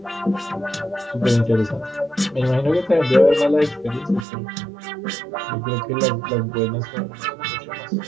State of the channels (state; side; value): drops out; left; at 4.2 s